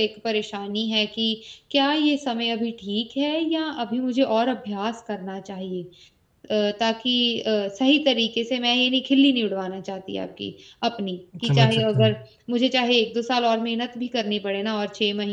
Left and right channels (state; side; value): identical; both; correlation 1.00